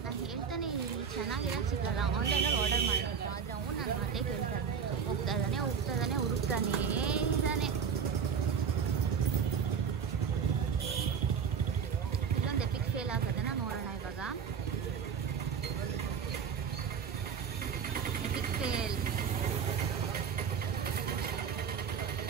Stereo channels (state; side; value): quieter; left; 6.9 dB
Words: ನಾನು ಹೇಳ್ತಾನೆ ಇಲ್ಲಿ ಚೆನ್ನಾಗಿರೋದು ಸಿಗಲ್ಲ, ಆನ್ಲೈನಲ್ಲಿ ಆರ್ಡರ್ ಮಾಡಬೇಕು. ಆದರೆ ಅವನು ನನ್ನ ಮಾತೇ ಕೇಳ್ತಾನೆ. ಹೋಗ್ತಾ ಇದ್ದಾನೆ ಹುಡುಕ್ತಾನೇ ಇದ್ದಾನೆ. ಇಲ್ಲೊಂದು ಎಪಿಕ್ ಫೇಲ್ ಆಗೋದನ್ನ ನೋಡೋಣ ಇವಾಗ. EPIC fail.